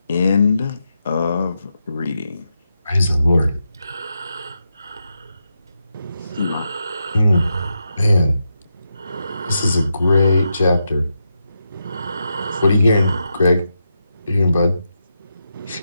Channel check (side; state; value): both; inverted; correlation -0.86